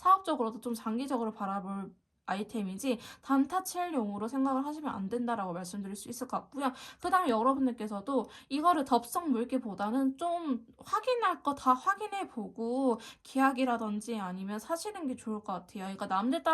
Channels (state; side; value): identical; both; correlation 1.00